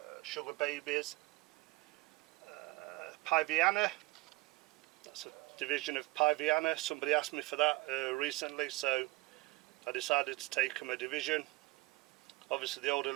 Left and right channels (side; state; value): left; quieter; 21.4 dB